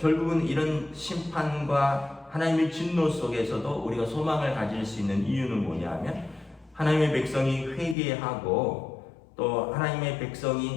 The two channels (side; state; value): right; drops out; at 8.0 s